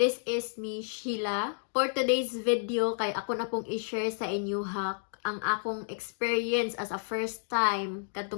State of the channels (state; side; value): silent; right; digital silence